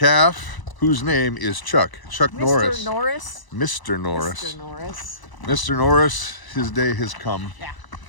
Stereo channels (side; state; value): right; late; 1.0 ms